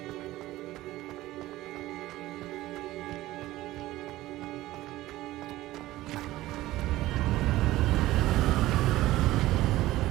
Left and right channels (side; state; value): left; quieter; 16.6 dB